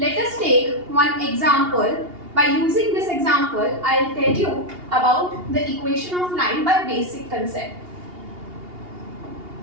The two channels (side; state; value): left; late; 2.8 ms